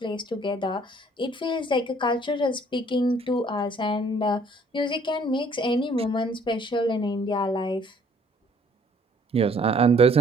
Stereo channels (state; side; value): normal; both; correlation 0.60